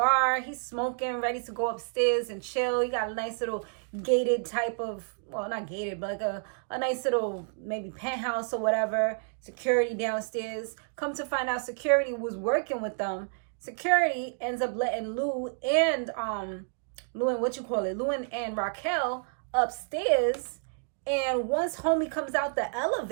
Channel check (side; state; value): left; silent; digital silence